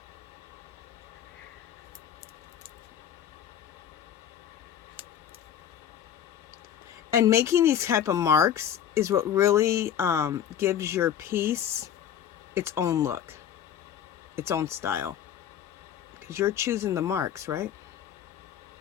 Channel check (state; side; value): quieter; right; 9.6 dB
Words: And making these type of marks is what really gives your piece its own look, its own style. Because you're choosing the marks, right?